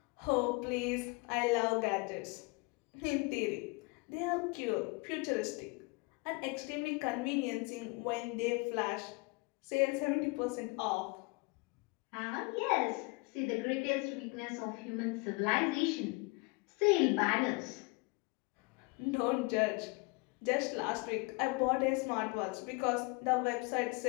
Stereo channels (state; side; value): quieter; right; 28.0 dB